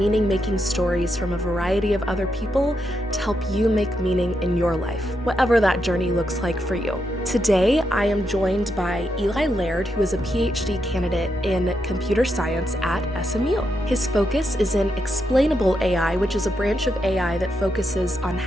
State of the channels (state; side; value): normal; both; correlation 0.83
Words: stories from a variety of other people to help you make meaning in your life, whatever that journey looks like for you. Today, I am joined by Eli Laird, who is a PhD candidate in computer science at SMU. His focus is in explainable AI, which is a branch of AI that focuses on